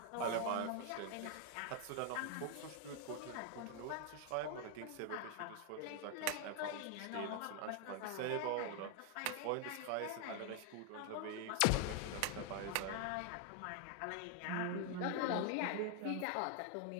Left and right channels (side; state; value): both; different; correlation 0.01